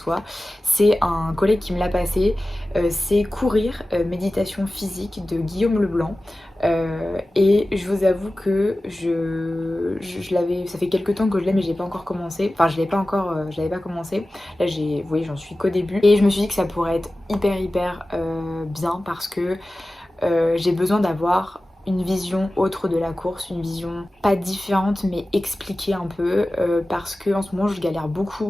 c'est un collègue qui me l'a passé. C'est Courir, méditation physique de Guillaume Leblanc. Et je vous avoue que je l'avais, ça fait quelques temps que je l'ai, mais j'ai pas encore commencé. Enfin, je l'avais pas commencé. Là, vous voyez, j'en suis qu'au début. Et je me suis dit que ça pourrait être hyper bien parce que j'ai besoin d'avoir une vision autre de la course, une vision pas différente mais expliquée un peu, parce que en ce moment je galère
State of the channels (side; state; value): both; normal; correlation 0.96